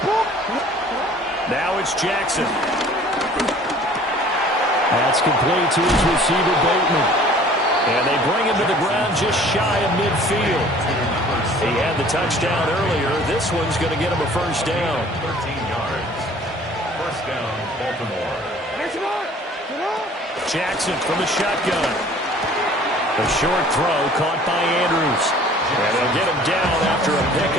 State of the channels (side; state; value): both; normal; correlation 0.51